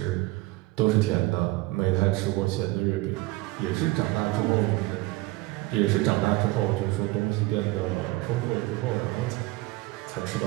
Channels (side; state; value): left; quieter; 20.4 dB